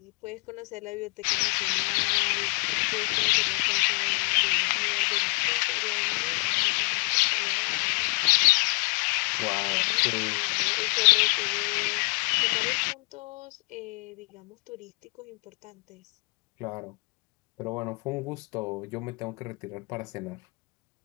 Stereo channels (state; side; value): quieter; right; 32.1 dB